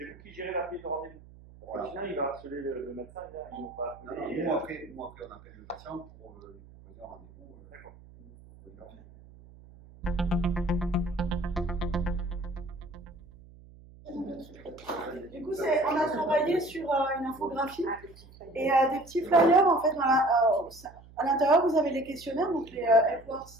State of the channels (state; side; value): noise; right; hum, 22 dB below the sound